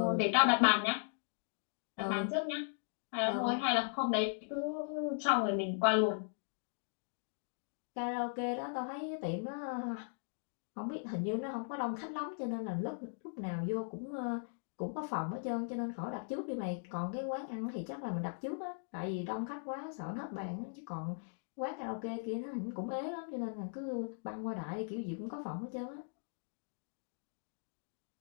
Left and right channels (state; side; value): silent; right; digital silence